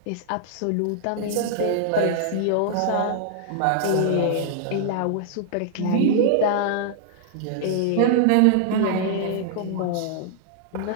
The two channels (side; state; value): both; different; correlation -0.01